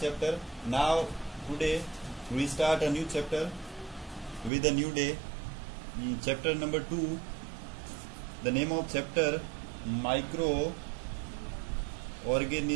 chapter. Now today we start a new chapter with a new day. Chapter number 2, the name of chapter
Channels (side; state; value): left; drops out; at 4.5 s